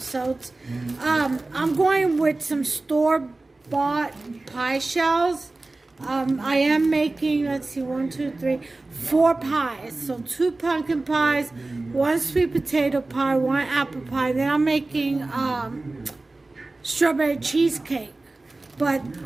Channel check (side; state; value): left; quieter; 3.1 dB